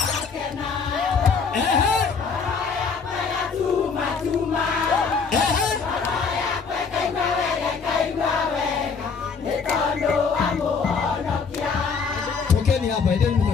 tokeni hapa, endeni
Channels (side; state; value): right; quieter; 5.4 dB